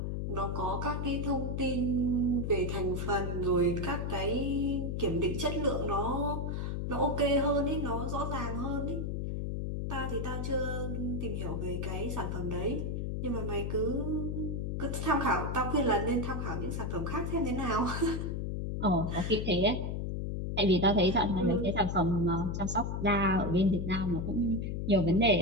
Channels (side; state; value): left; noise; hum, 2 dB below the sound